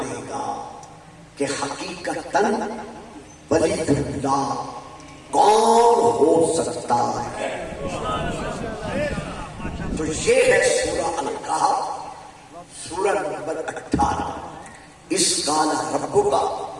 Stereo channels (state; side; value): identical; both; correlation 1.00